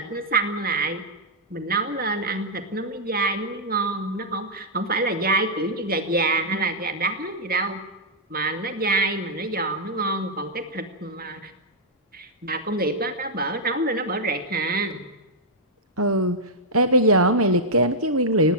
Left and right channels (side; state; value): both; normal; correlation -0.07